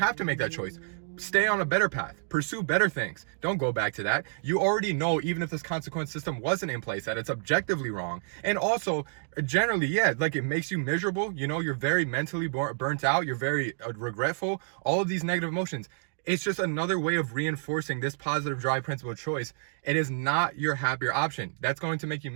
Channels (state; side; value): silent; left; digital silence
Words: to make that choice. Stay on a better path. Pursue better things. Don't go back to that. You already know, even if this consequence system wasn't in place, that it's objectively wrong. And also, generally, yeah, like it makes you miserable. You know, you're very mentally burnt out. You're very regretful. All of these negative emotions. It's just another way of reinforcing this positive drive principle choice. It is not your happier option. That's going to make you